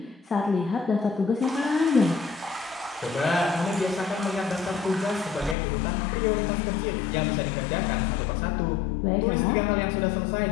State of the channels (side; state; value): right; drops out; at 5.6 s